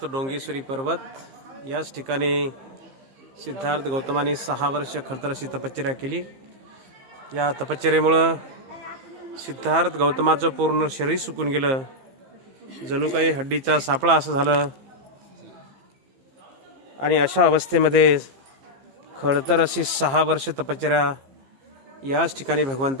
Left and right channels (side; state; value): left; late; 15 ms